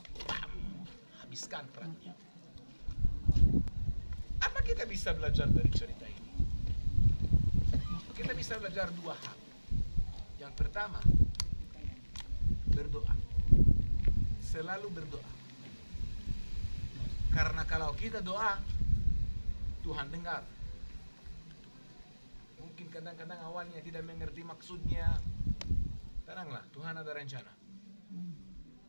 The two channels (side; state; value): both; inverted; correlation -1.00